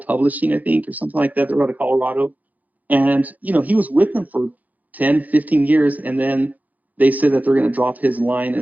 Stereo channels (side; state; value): left; late; 0.080 ms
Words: I think, or something like that. They're out of Colorado. And, he was with them for 10, 15 years. And then they said that they're going to drop his line